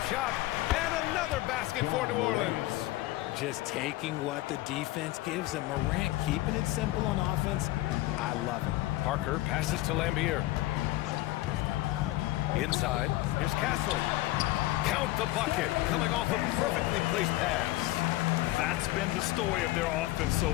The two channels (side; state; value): right; quieter; 17.4 dB